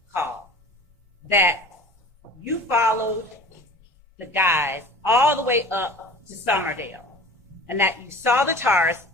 call that you followed the guys all the way up to Summerdale and that you saw the tars?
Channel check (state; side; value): normal; both; correlation 0.41